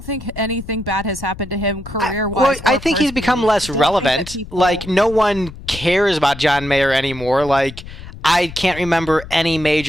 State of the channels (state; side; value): noise; left; rumble, 14 dB below the sound